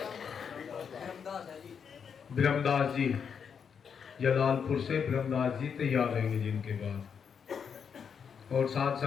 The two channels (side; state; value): right; quieter; 6.9 dB